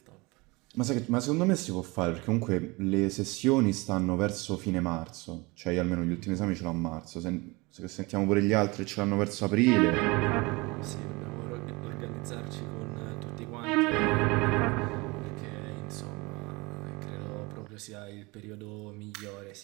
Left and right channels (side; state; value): left; quieter; 24.8 dB